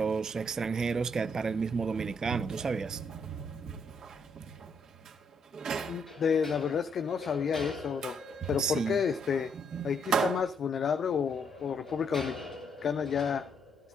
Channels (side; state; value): both; normal; correlation 0.73